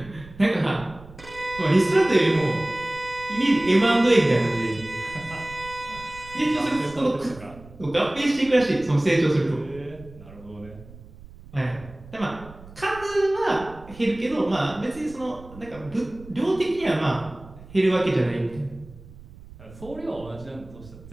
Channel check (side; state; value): right; noise; rumble, 19 dB below the sound